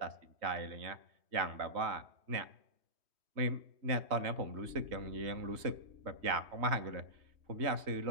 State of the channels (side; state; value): left; late; 3.2 ms